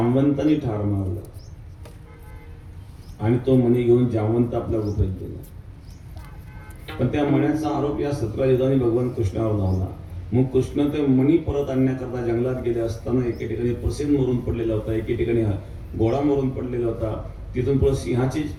ठार मारलं, आणि तो मणी घेऊन जामवंत आपल्या गुफेत गेला. पण त्या मण्याचा आरोप या सत्राजिताने भगवान कृष्णावर झाला. मग कृष्ण ते मणी परत आणण्याकरता जंगलात गेले असताना एके ठिकाणी प्रसेन मरून पडलेला होता, एके ठिकाणी घोडा मरून पडलेला होता. तिथून पुढे सिंहाचे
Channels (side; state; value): both; identical; correlation 1.00